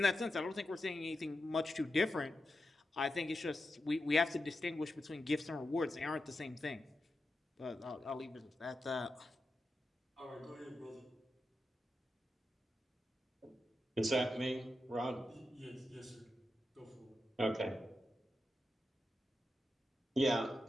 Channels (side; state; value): both; normal; correlation 0.89